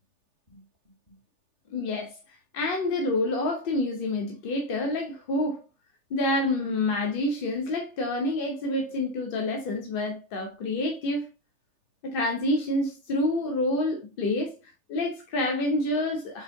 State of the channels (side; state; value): left; late; 3.4 ms